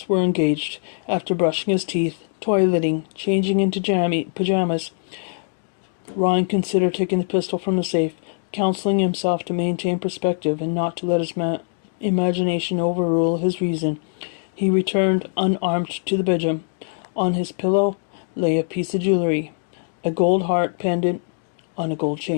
were engaged. After brushing his teeth, toileting, changing into pajamas, Ryan considered taking the pistol from the safe, counseling himself to maintain perspective and not to let his imagination overrule his reason. He returned unarmed to the bedroom. On his pillow lay a piece of jewelry, a gold heart pendant on a gold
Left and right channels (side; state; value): right; silent; digital silence